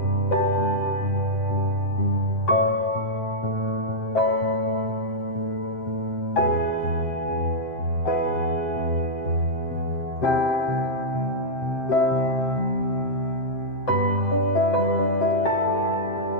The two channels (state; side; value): late; right; 7.7 ms